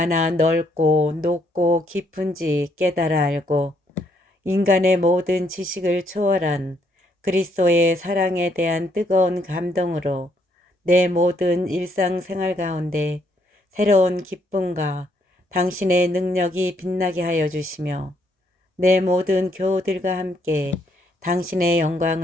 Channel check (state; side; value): normal; both; correlation 0.72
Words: 넓고 높고 깊은지 깨달아 알고 인간의 모든 지식을 초월한 그리스도의 사랑에 대한 뜨거운 감동으로 내 모든 일상생활 가운데 새로운 기쁨과 당신의 능력이 빛나게 하여 주시며 내 모든 교우들과 함께 당신의